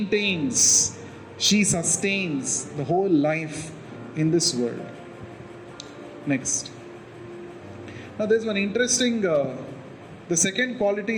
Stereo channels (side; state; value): both; identical; correlation 1.00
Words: she sustains the whole life in this world. Next. Now there's one interesting, the second quality